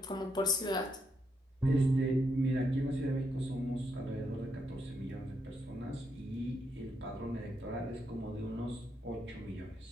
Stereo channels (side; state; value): both; normal; correlation 0.79